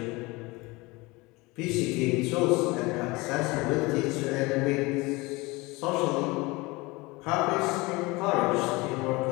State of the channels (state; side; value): quieter; right; 23.6 dB